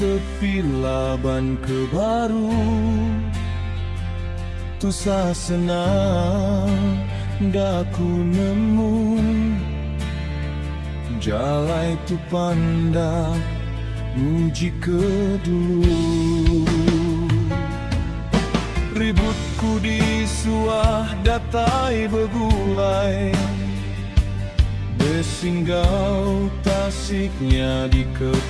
laban ke baru, tu sasena daku nemu jalai tu panda muji ke dulu. Ributku di suah datai begulai, besinggau tasiknya di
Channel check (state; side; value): identical; both; correlation 1.00